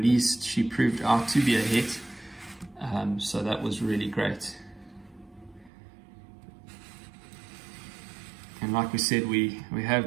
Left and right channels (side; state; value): left; drops out; at 5.7 s